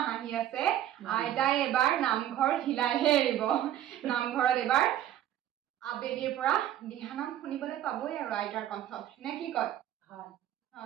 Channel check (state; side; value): quieter; left; 11.9 dB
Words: আহি আছে আইতাই এবাৰ নামঘৰ হিলাইহে এৰিব নামঘৰত এবাৰ আবেলিৰ পৰা দিহানাম শুনিবলৈ পাবই আৰু আইতাৰ কণ্ঠত নে কি কয় হয়